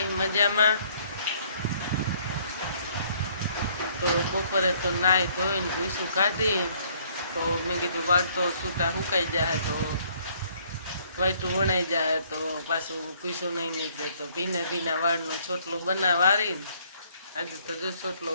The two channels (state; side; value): inverted; both; correlation -0.63